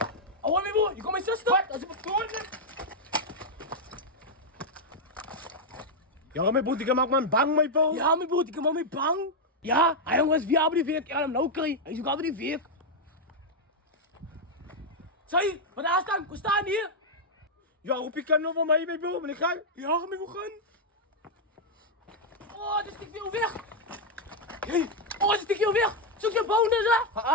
Oh, mijn bo, je komt mijn zus toch? Als ik me voor Ja, mijn boet, ik maak man bang, mijn bo. Ja, mijn broer, ik ben mee bang. Ja, hij jongens, wie hebben die werk? Ik ga hem nou krijgen. Hij zoekt over die werk. Zeg, wat daar staan? We staan hier. Ja, roep je kan nog van mij, mijn bo, maar ik ga. Ja, mijn broer gaan. Oh, dit stikt veel weg. Hey, oh, dit stikt veel weg. Zoek je bonus,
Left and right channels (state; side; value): normal; both; correlation -0.01